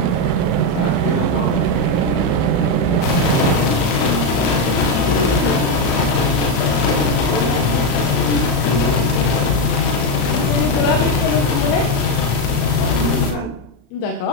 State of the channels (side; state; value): right; late; 34 ms